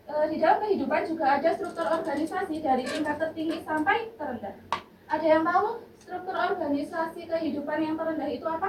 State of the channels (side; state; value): both; identical; correlation 1.00